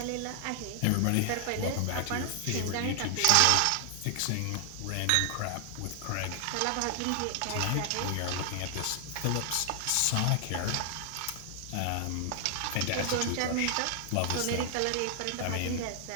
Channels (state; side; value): different; both; correlation 0.00